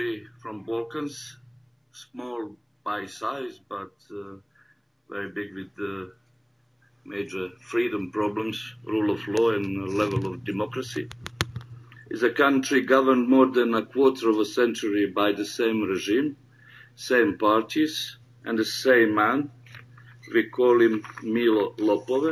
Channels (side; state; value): both; identical; correlation 1.00